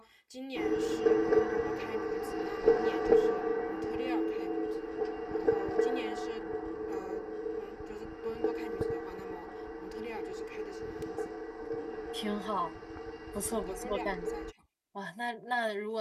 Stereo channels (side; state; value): both; identical; correlation 1.00